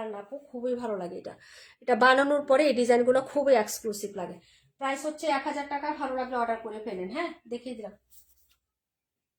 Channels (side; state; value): both; identical; correlation 1.00